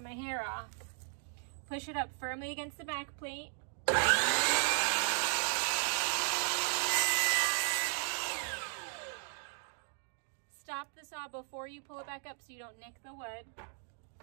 my hair off. Push it up firmly against the back plate. Stop the saw before you pull it back up so you don't nick the wood.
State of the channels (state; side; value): silent; left; 54 dB below the other